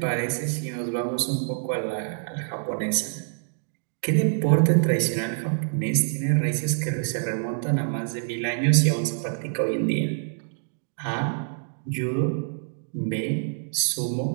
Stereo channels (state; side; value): silent; left; digital silence